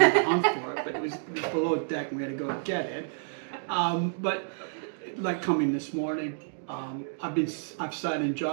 to hunt for it, but it was below deck and we had to go and get it. But like coming this morning, I've sat in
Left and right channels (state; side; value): silent; left; digital silence